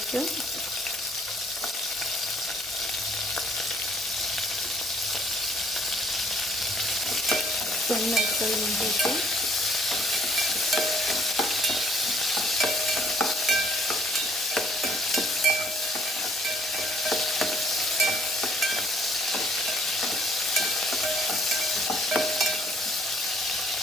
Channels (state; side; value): normal; both; correlation 0.63